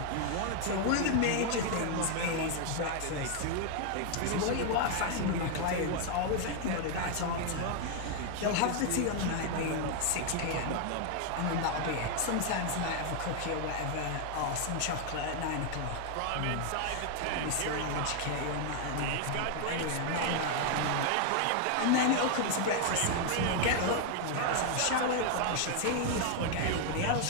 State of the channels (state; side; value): different; both; correlation 0.00